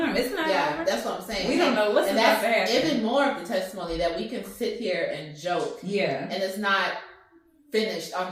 It's not over. That's what I'm saying. We don't know what's about to happen. Even more of the testimony that we can sit here and joke. Yeah, and it's not finished on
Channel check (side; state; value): both; identical; correlation 1.00